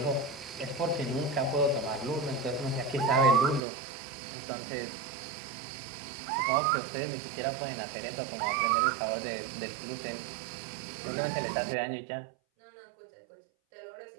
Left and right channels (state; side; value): drops out; left; at 3.7 s